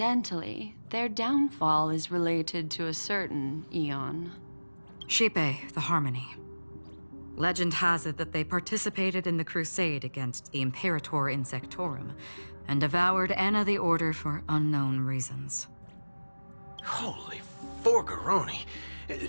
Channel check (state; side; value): inverted; both; correlation -1.00